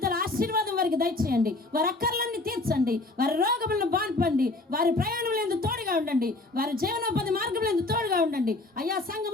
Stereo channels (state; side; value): quieter; right; 3.0 dB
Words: ఆశీర్వాదం వారికి దయచేయండి. వారి అక్కర్లన్నీ తీర్చండి. వారి రోగములను బాన్పండి. వారి ప్రయాణంలో తోడుగా ఉండండి. వారి జీవనోపాధి మార్గంలో తోడుగా ఉండండి. అయ్యా